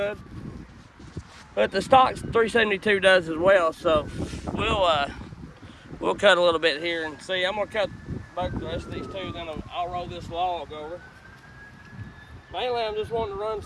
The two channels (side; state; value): both; identical; correlation 1.00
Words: but the stock 372 does as well. So we'll cut a little bit here and see. I'm gonna cut both the rest of these two, then I'll roll this log over. Mainly, I'm just wanting to run